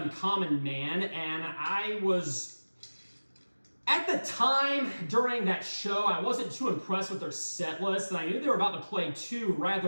Man, and I was, at the time during that show, I wasn't too impressed with their set list, and I knew they were about to play two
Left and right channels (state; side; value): inverted; both; correlation -1.00